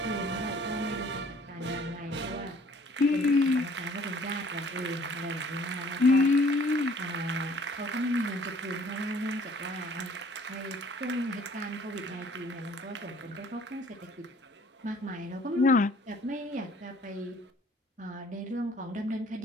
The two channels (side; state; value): both; normal; correlation 0.56